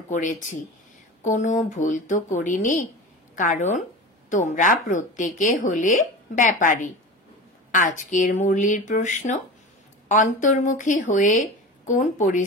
করেছি। কোনো ভুল তো করিনি, কারণ তোমরা প্রত্যেকে হলে ব্যাপারী। আজকের মুরলির প্রশ্ন, অন্তর্মুখী হয়ে কোন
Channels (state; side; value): normal; both; correlation 0.31